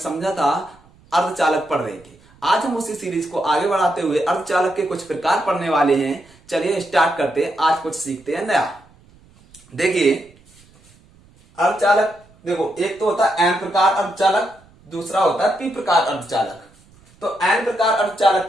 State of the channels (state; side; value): noise; right; rumble, 28 dB below the sound